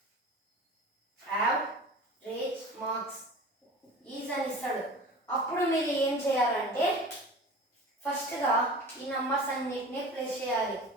ఈజ్ అని ఇస్తాడు. అప్పుడు మీరు ఏం చేయాలంటే ఫస్ట్గా ఈ నంబర్స్ అన్నిటిని ప్లస్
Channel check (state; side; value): normal; both; correlation 0.38